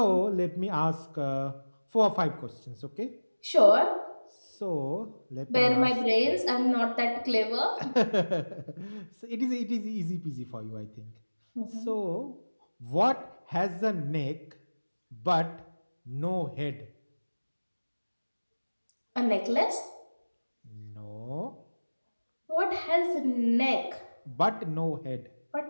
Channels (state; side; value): inverted; both; correlation -1.00